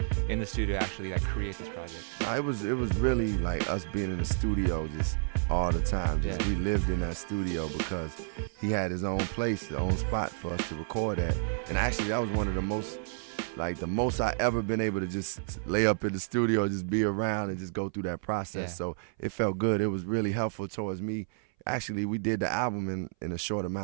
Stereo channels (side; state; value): left; silent; 57 dB below the other